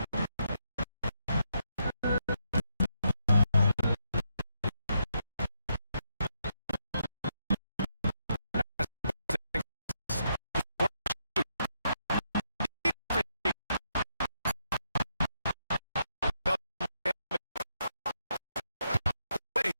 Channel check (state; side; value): inverted; both; correlation -0.80